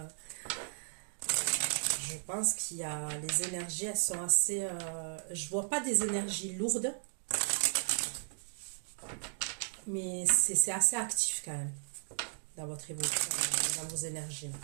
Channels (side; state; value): left; silent; digital silence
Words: je pense qu'il y a, les énergies, elles sont assez, je vois pas des énergies lourdes, mais c'est assez actif quand même, dans votre évolution, dans vos énergies.